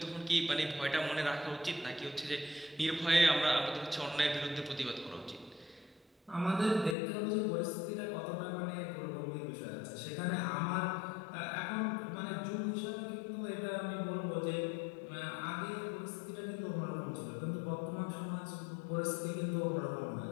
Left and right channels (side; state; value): right; drops out; at 7.0 s